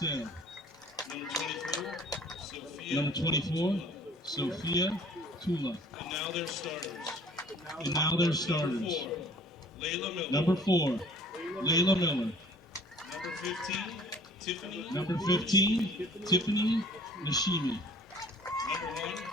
Number 24, Sophia Tula. And now their starters. Number 4, Layla Miller. Number 15, Tiffany Nishimi.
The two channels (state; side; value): normal; both; correlation 0.51